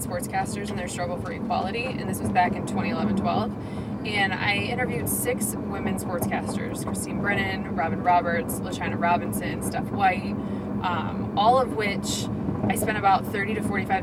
sportscasters and their struggle for equality, and this was back in 2011-12. And I interviewed 6 women sportscasters: Christine Brennan, Robin Roberts, LaChina Robinson, Steph White, all of which I spent about 30 to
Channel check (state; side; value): identical; both; correlation 1.00